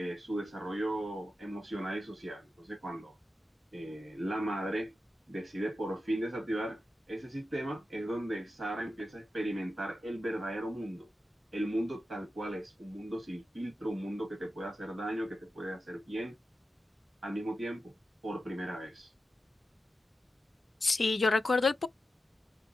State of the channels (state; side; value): normal; both; correlation 0.91